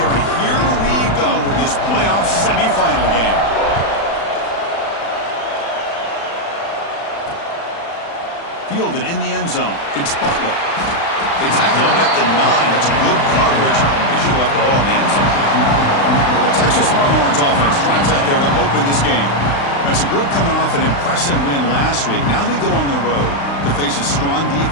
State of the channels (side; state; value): right; late; 35 ms